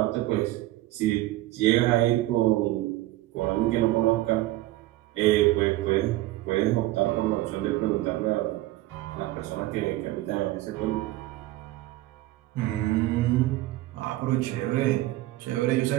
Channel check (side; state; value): left; quieter; 17.2 dB